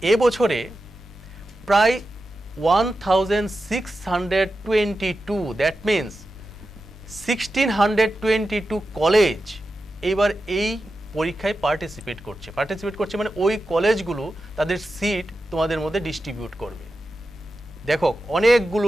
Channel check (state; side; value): normal; both; correlation 0.91